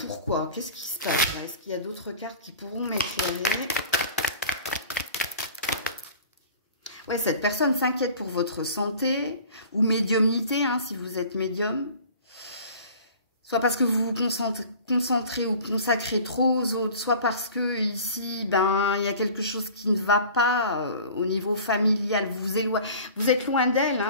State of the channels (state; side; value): inverted; both; correlation -0.43